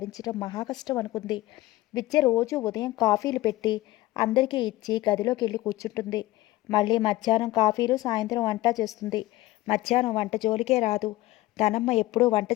మహా కష్టం అనుకుంది. విద్య రోజు ఉదయం కాఫీలు పెట్టి అందరికీ ఇచ్చి గదిలోకి వెళ్ళి కూర్చుంటుంది. మళ్ళీ మధ్యాహ్నం కాఫీలు, సాయంత్రం వంట చేస్తుంది. మధ్యాహ్నం వంట జోలికే రాదు. ధనమ్మ ఎప్పుడూ వంట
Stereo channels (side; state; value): right; quieter; 17.7 dB